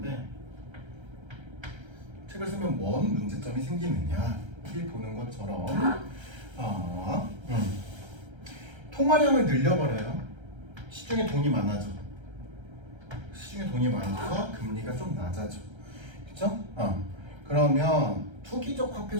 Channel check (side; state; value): left; late; 1.3 ms